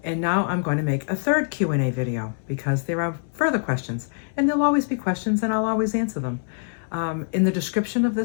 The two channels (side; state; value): right; silent; digital silence